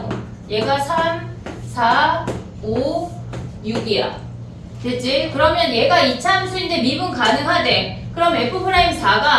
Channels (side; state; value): both; identical; correlation 1.00